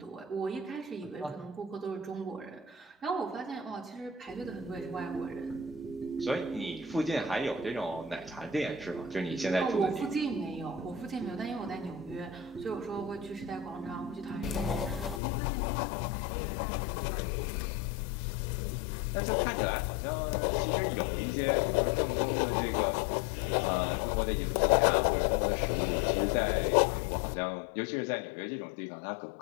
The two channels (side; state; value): right; drops out; at 15.2 s